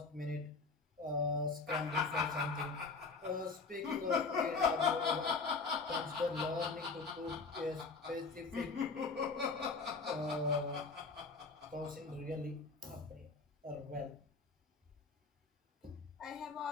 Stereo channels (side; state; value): right; quieter; 4.3 dB